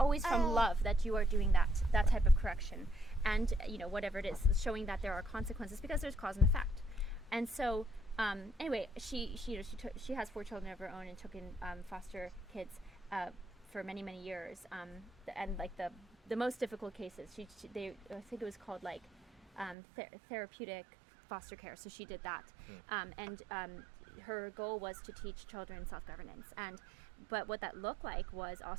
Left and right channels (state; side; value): drops out; left; at 19.8 s